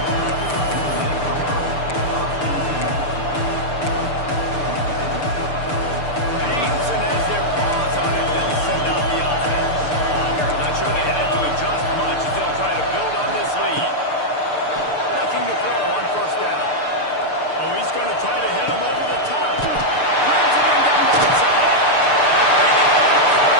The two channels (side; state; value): right; late; 6.7 ms